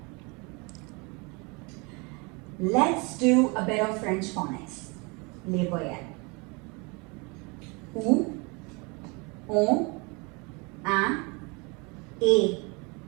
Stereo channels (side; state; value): left; quieter; 29.5 dB